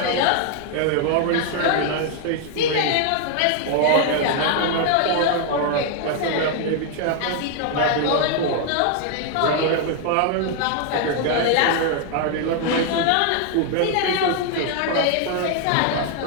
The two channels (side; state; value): both; different; correlation 0.00